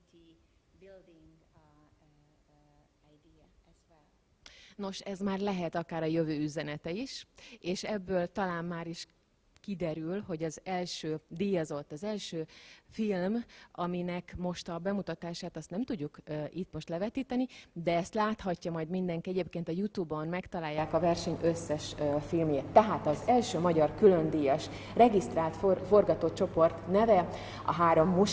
building idea as well. Nos, ez már lehet akár a jövő üzenete is, és ebből talán már is kiderül, hogy az első díjazott, az első film, aminek most a bemutatását azt nem tudjuk itt most levetíteni, de ezt láthatja majd mindenki, egyébként a YouTube-on megtalálják a verseny összes filmjét. Tehát az első magyar különdíjas regisztrált forgatócsoport neve a Három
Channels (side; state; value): both; identical; correlation 1.00